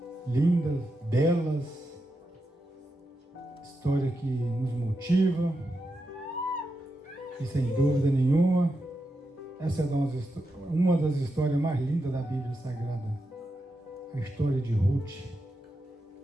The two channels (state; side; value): normal; both; correlation 0.87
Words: lindas, belas, história que nos motiva, e sem dúvida nenhuma, essa é uma das histórias mais lindas da Bíblia Sagrada, a história de Ruth,